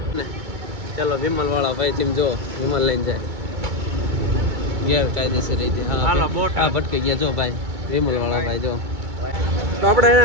ને. ચાલો વિમલ વાળા ભાઈ તેમ જો વિમલ લઈને જાય. ગેરકાયદેસર રીતે હાલો બોટ ભટકી ગયા. જો ભાઈ વિમલ વાળા ભાઈ જો. તો આપણે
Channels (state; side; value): late; left; 2.2 ms